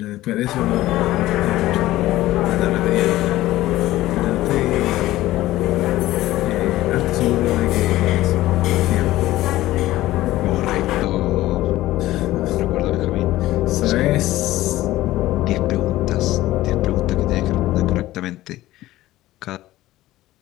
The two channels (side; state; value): right; quieter; 16.1 dB